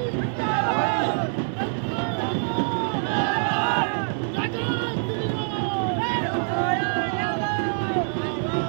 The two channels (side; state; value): left; silent; digital silence